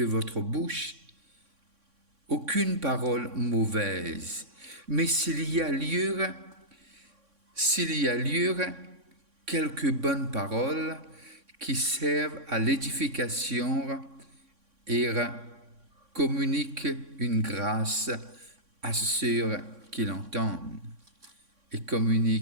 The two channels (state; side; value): late; left; 3.6 ms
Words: votre bouche aucune parole mauvaise, mais s'il y a lieu, quelques bonnes paroles qui servent à l'édification et communiquent une grâce à ceux qui l'entendent. Et